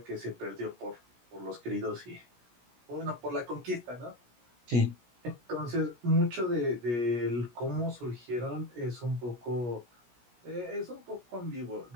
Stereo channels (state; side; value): late; left; 17 ms